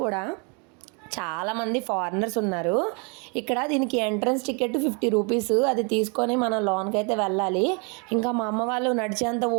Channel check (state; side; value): quieter; left; 34.1 dB